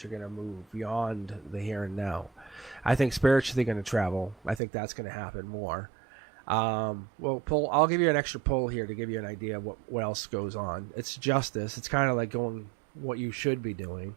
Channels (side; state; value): left; drops out; at 4.6 s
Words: You're going to move beyond the here and now. I think spiritually going to travel. I think that's going to happen more. Well, pull. I'll give you an extra pull here to give you an idea of what else goes on. It's justice. It's kind of like going what you should be doing,